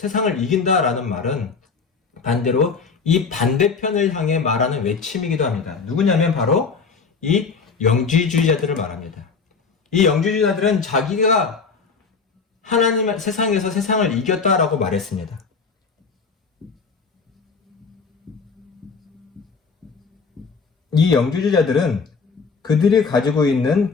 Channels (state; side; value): quieter; right; 5.1 dB